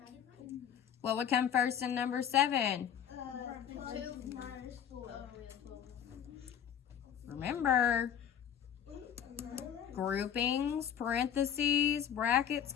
What would come first in number 7? 2 minus 4. Remember, groupings, parentheses, brackets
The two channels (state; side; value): quieter; right; 9.0 dB